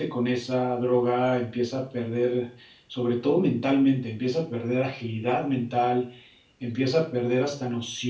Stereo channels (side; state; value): both; identical; correlation 1.00